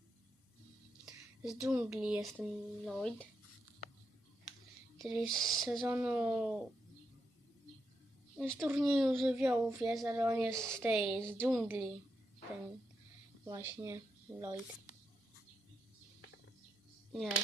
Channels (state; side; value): normal; both; correlation 0.83